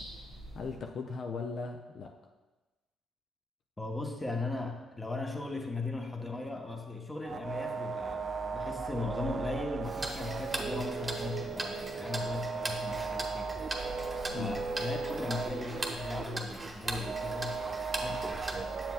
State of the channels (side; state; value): both; normal; correlation 0.79